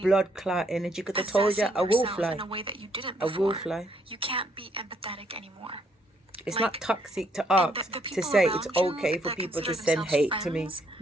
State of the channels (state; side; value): normal; both; correlation 0.71